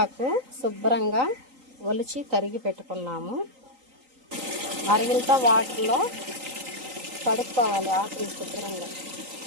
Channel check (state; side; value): late; left; 3.9 ms